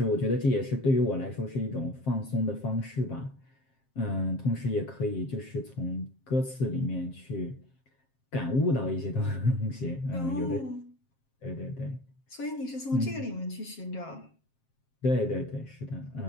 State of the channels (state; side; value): late; right; 7.5 ms